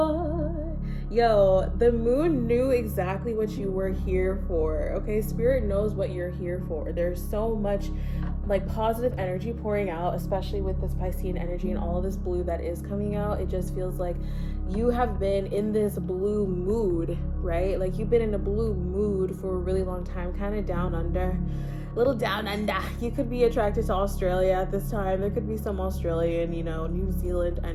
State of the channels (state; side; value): identical; both; correlation 1.00